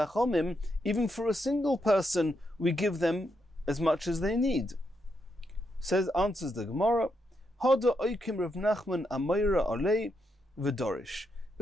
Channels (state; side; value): normal; both; correlation 0.81